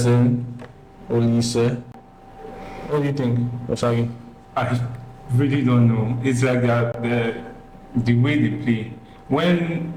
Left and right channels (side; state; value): both; identical; correlation 1.00